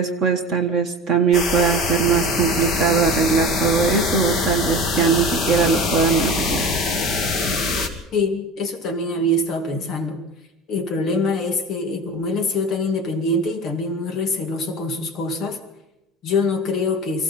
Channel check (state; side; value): normal; both; correlation 0.33